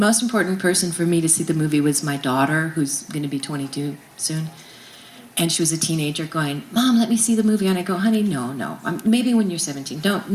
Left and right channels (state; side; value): identical; both; correlation 1.00